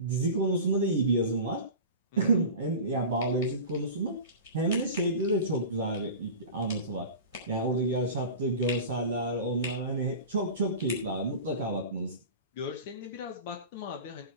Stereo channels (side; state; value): both; inverted; correlation -0.33